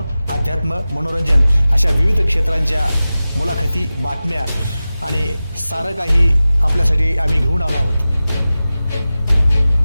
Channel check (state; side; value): inverted; both; correlation -0.95